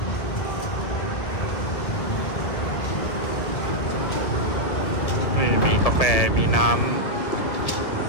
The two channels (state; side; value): late; right; 1.7 ms